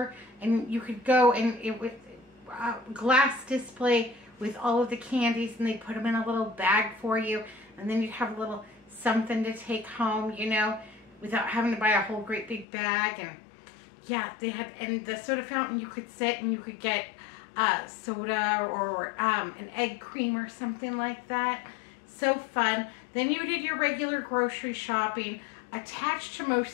and you could go, and it was a glass display with all of the candies, and they put them in a little bag for you, and then you'd have a little something to take home, you know, without having to buy a whole great big bag. And yeah, they had, and the soda fountain, you could sit and you could get soda or an egg cream or something like that. So fun. Then you did your regular grocery shopping. Attached to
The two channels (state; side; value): drops out; right; at 12.7 s